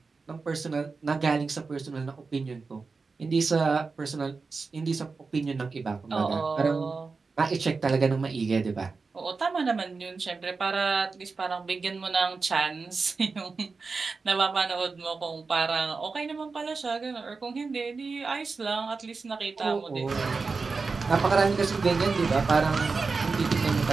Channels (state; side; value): quieter; left; 4.4 dB